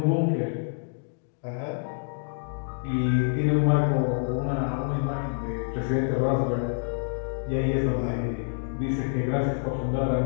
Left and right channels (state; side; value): silent; right; digital silence